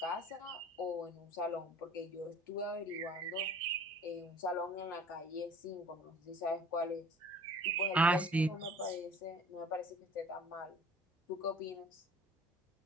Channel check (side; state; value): both; normal; correlation 0.49